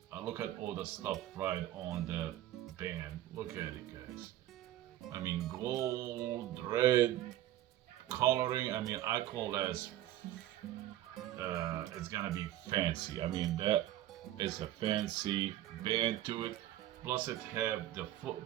Look at all the stuff right on the band. Look at it, guys. I mean, gold, red, coloring. I call that it's gonna be fancy. That is a fancy band to it. Plus, it have the foot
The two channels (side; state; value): left; quieter; 13.6 dB